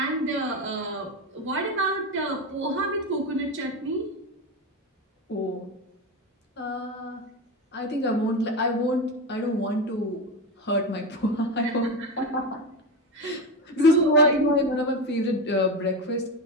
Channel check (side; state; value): both; normal; correlation 0.17